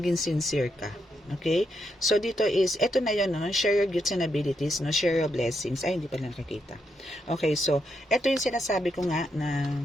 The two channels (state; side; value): normal; both; correlation 0.80